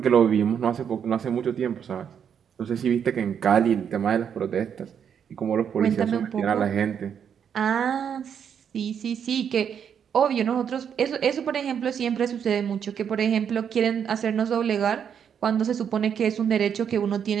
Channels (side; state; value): left; quieter; 7.9 dB